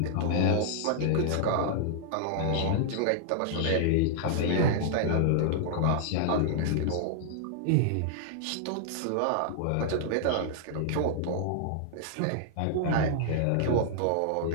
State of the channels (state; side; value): different; both; correlation -0.01